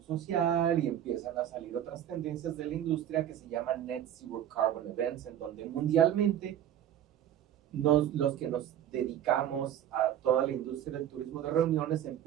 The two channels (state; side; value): quieter; left; 10.8 dB